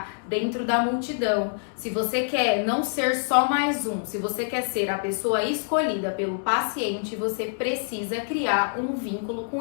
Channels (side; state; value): right; silent; 61 dB below the other